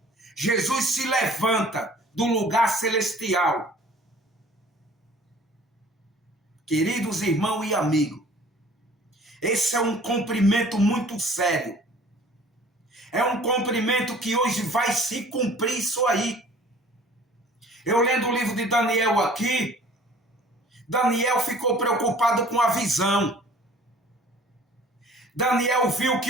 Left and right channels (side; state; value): both; normal; correlation 0.50